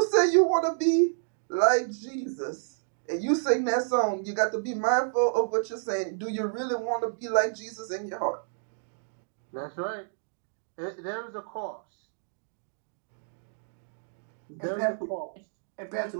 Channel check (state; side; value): silent; left; digital silence